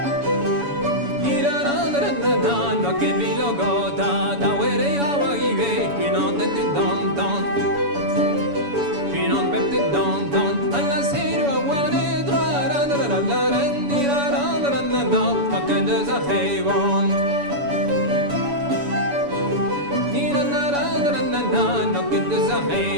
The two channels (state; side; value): late; left; 7.0 ms